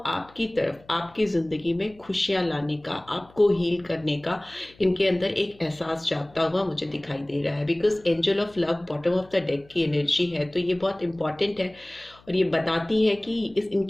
तरफ, आपकी जिंदगी में खुशियां लाने का, आपको हील करने का इनके अंदर एक एहसास जागता हुआ मुझे दिखाई दे रहा है। Because angel of love bottom of the deck की एनर्जी है, तो ये बहुत इंपॉर्टेंट है और ये बताती है कि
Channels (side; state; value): left; noise; hum, 27 dB below the sound